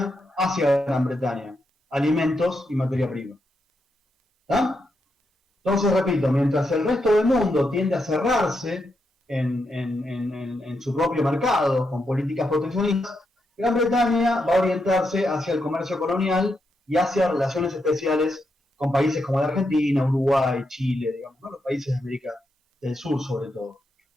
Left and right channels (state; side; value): normal; both; correlation 0.83